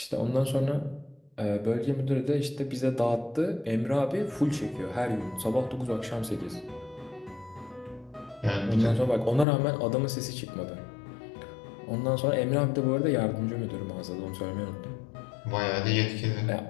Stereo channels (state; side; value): drops out; right; at 9.5 s